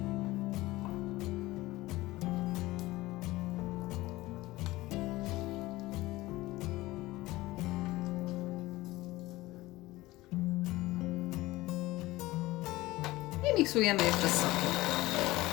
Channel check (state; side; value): quieter; right; 18.8 dB